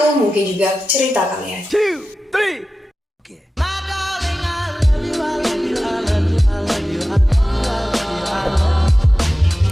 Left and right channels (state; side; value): normal; both; correlation 0.94